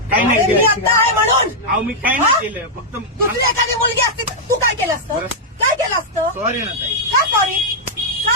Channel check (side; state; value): both; normal; correlation -0.06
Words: काही नाही मी केलं. आता आहे म्हणून. अहो मी काही नाही केलं, फक्त दुसरी एखादी मुलगी असती तर तू काय केलं असतं? काय केलं असतं? सॉरी ना ताई. का सॉरी?